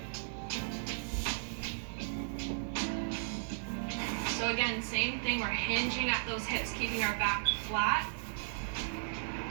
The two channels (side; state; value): left; silent; digital silence